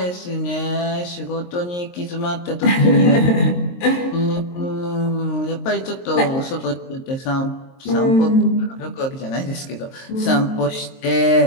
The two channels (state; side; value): late; right; 23 ms